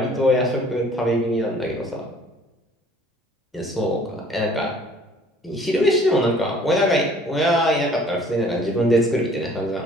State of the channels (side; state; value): both; normal; correlation 0.54